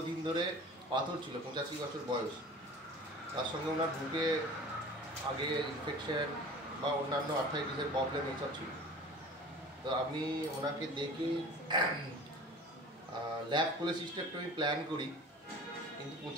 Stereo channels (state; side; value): normal; both; correlation 0.41